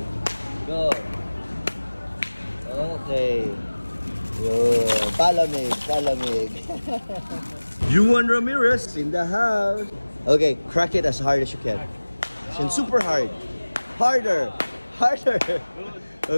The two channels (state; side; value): inverted; both; correlation -1.00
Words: Go. Okay. Yo. Palamig. Palamig. Juan Ramirez in the house. Okay. Crack it as hard as you can. And super hard. Harder. Harder.